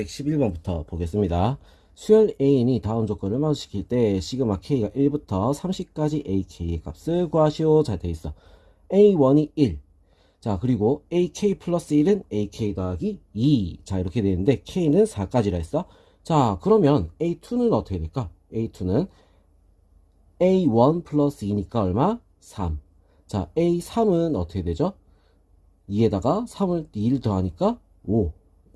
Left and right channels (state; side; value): identical; both; correlation 1.00